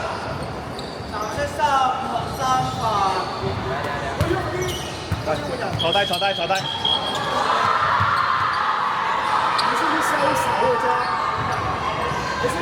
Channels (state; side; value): identical; both; correlation 1.00